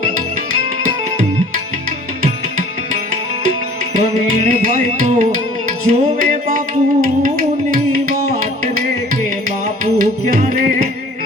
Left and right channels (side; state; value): both; normal; correlation 0.50